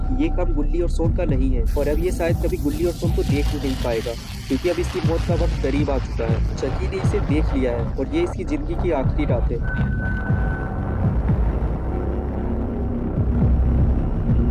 ये काम गुल्ली और सोन का नहीं है, और अब ये शायद कभी गुल्ली और सोन को देख ही नहीं पाएगा, क्योंकि अब इसकी मौत का वक्त करीब आ चुका है। चकी ने इसे देख लिया है और ये इसकी जिंदगी की आखिरी रात है।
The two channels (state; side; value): identical; both; correlation 1.00